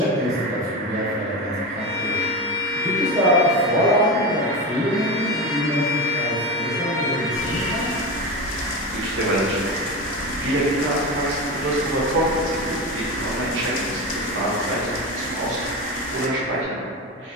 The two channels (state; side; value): normal; both; correlation 0.20